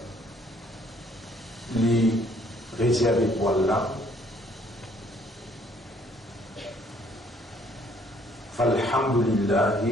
les réservé pour Allah.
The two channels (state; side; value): normal; both; correlation 0.63